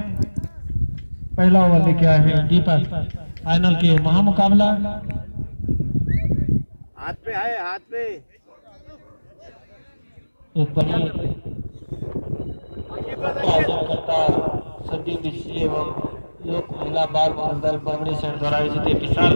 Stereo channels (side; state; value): both; inverted; correlation -1.00